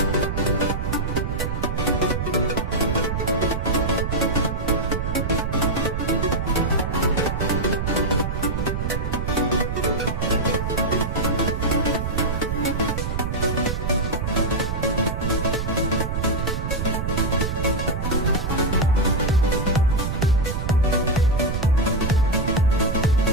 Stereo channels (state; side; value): noise; right; rumble, 1 dB below the sound